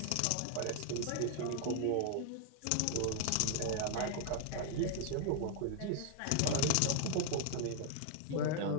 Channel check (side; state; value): both; different; correlation 0.00